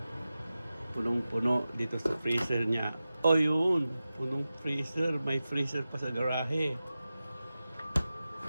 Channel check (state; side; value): inverted; both; correlation -0.94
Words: punong-puno dito sa freezer niya. Oh, yun. Punong freezer. May freezer pa sa garahe.